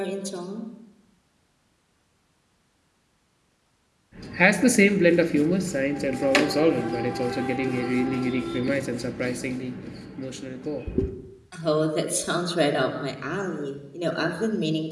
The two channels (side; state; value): both; identical; correlation 1.00